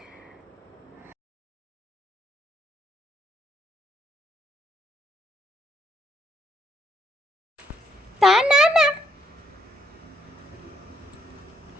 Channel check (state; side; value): normal; both; correlation 0.71